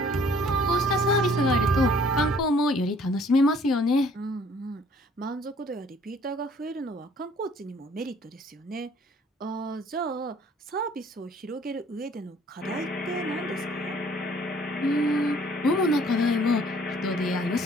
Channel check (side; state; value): both; normal; correlation 0.57